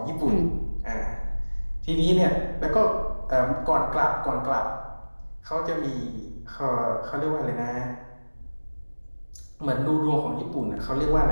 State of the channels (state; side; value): inverted; both; correlation -1.00